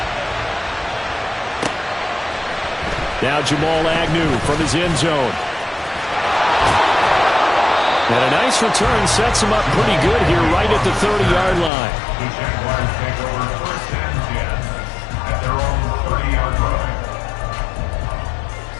Now Jamal Agnew from his end zone. And a nice return sets him up pretty good here right at the 30-yard line.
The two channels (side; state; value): right; drops out; at 11.7 s